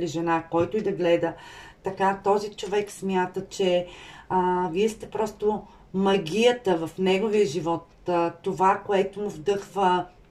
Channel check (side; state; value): both; identical; correlation 1.00